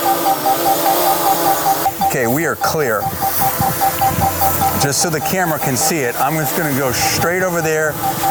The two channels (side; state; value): both; identical; correlation 1.00